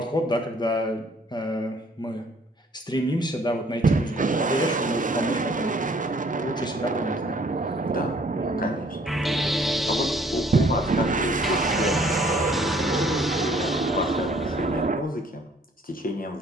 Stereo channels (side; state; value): both; normal; correlation 0.59